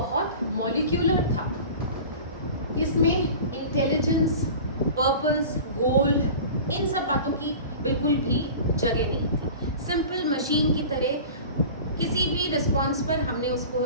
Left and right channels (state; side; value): inverted; both; correlation -0.38